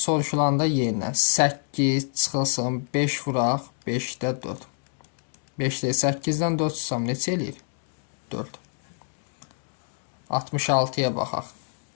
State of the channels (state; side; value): silent; right; digital silence